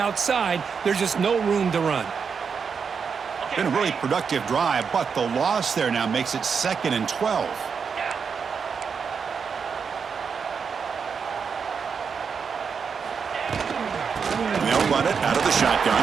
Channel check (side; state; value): left; quieter; 6.1 dB